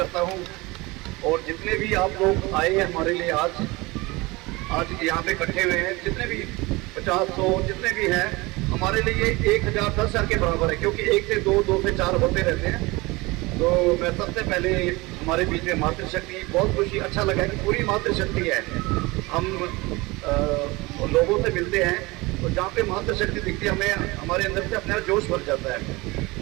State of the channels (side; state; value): left; quieter; 23.1 dB